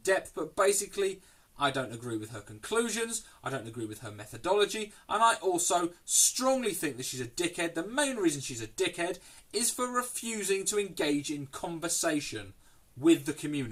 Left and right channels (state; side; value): identical; both; correlation 1.00